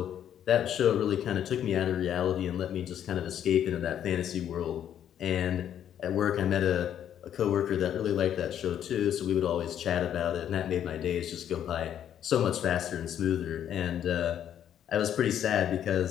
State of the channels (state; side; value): quieter; right; 10.0 dB